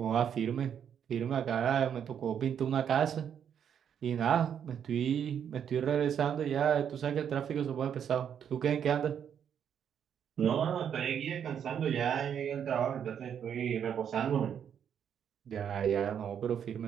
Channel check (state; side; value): quieter; left; 8.4 dB